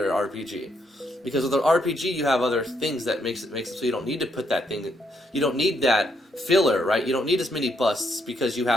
RPG, because with an RPG you have other things that makes it so you don't need to put that thing. You don't need that filler, right? You don't need as many busts because you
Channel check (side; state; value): both; normal; correlation 0.75